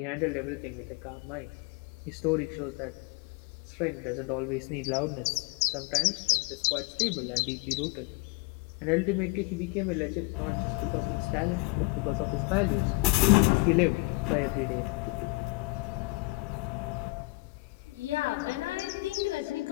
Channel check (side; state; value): right; quieter; 24.7 dB